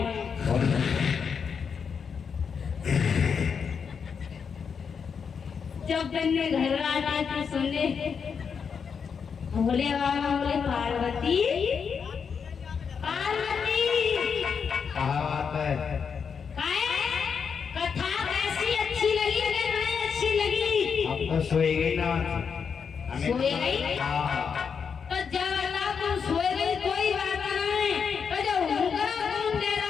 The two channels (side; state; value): right; quieter; 6.4 dB